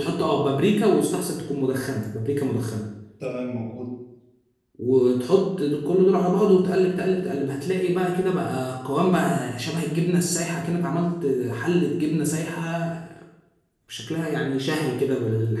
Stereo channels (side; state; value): both; identical; correlation 1.00